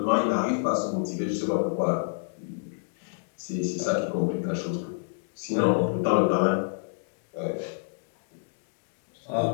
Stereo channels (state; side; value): silent; right; digital silence